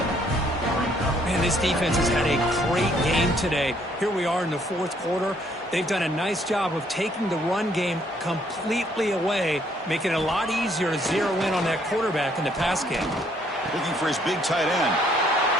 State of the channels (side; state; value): both; normal; correlation 0.66